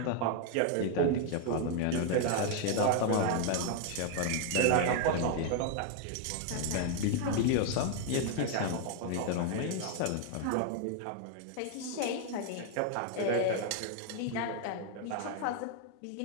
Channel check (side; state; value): both; different; correlation 0.00